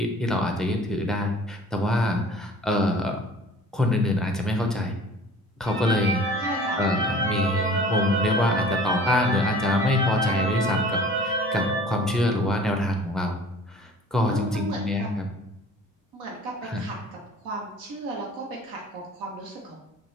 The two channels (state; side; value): normal; both; correlation 0.46